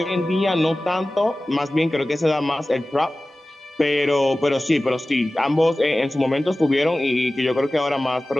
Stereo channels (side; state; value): both; normal; correlation 0.97